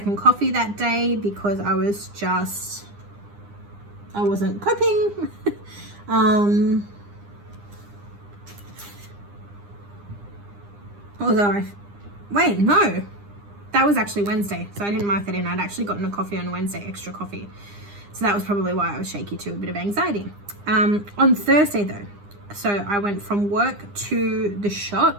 coffee that day because I wasn't coping. Wait, no, that was actually Wednesday, so I didn't mark that in. I'd actually gotten a coffee on Wednesday, extra coffee. So that was probably why I was shaky too, a bit of anxiety. On Thursday though, so I went from work to the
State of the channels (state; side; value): late; left; 9.8 ms